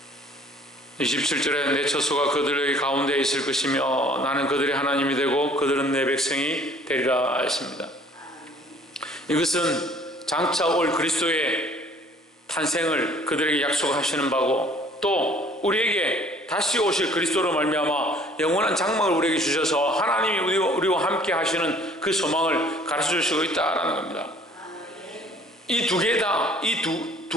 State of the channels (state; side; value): normal; both; correlation 0.55